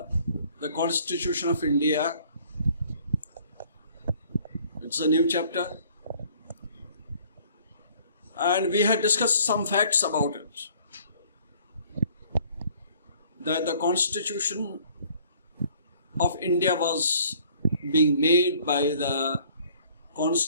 the Constitution of India. It's a new chapter, and we had discussed some facts about it. That the Constitution of India was being made by the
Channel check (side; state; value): both; inverted; correlation -0.57